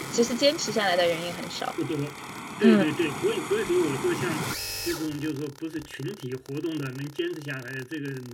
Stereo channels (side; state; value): both; identical; correlation 1.00